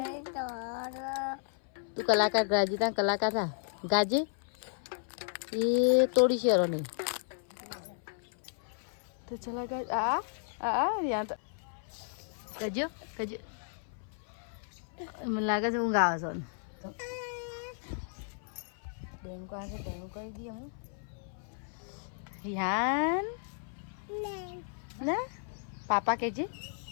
તું કલાકાર ગાજી તા કલાકાર થા ગાજે એ તોડી શેરો નહીં. તો ચલા ગાજ યા તો કજો કજો મને લાગે છે હું ગાવ છો બેંકો આવે બેંકો કરી દઈએ હું રિહાન ના પાપા કહેજે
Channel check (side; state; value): right; silent; 55 dB below the other